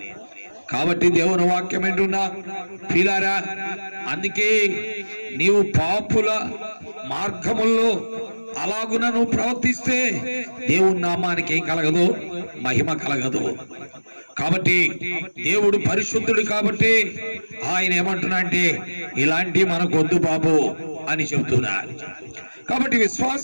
కాబట్టి దేవుని వాక్యం ఏంటున్నా ప్రియులారా, అందుకే నీవు పాపుల మార్గముల్లో అలాగున నువ్వు ప్రవర్తిస్తే దేవుని నామానికి ఏం కలగదు, మహిమ కలగదు. కాబట్టి దేవుడు పరిశుద్ధుడు కాబట్టి ఆయన ఏమంటున్నా అంటే ఇలాంటి మనకు వద్దు బాబు అని చెబుతున్నారు. కాబట్టి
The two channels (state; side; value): inverted; both; correlation -1.00